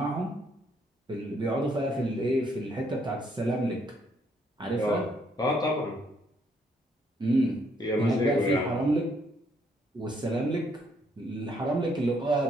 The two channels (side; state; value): both; normal; correlation 0.70